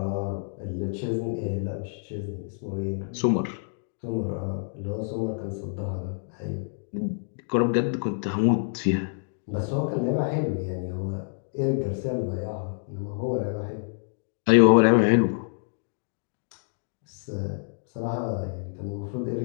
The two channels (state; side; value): silent; right; digital silence